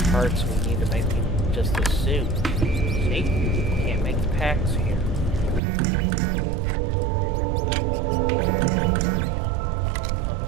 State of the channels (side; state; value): left; drops out; at 5.6 s